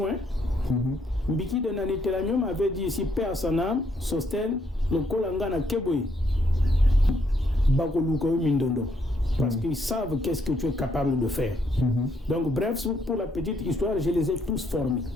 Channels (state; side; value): normal; both; correlation 0.73